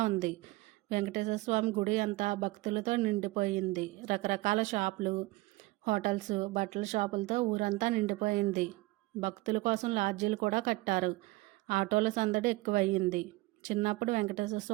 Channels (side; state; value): left; quieter; 21.4 dB